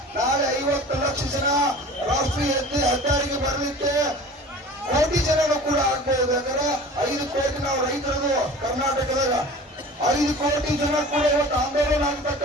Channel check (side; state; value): both; normal; correlation 0.41